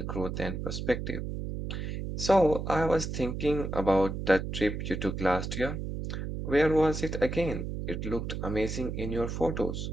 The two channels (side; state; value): right; noise; hum, 5 dB below the sound